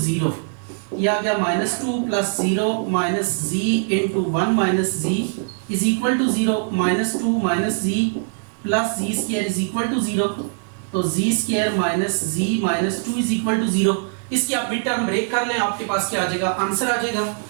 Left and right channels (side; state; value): left; silent; digital silence